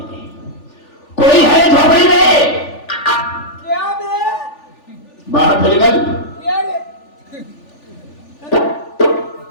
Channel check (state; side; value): late; right; 3.4 ms